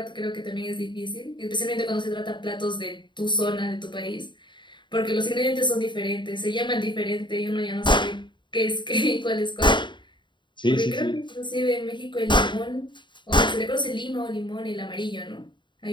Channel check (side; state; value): right; late; 0.23 ms